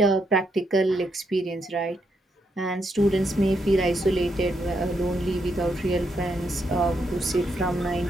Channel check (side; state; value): both; normal; correlation 0.79